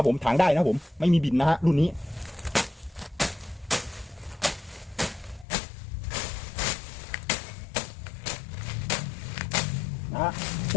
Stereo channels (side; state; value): right; drops out; at 5.5 s